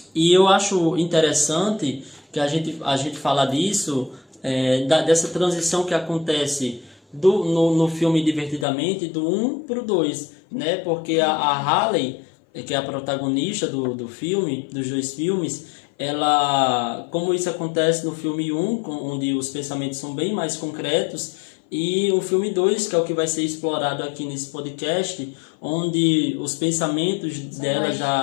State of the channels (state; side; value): drops out; right; at 8.7 s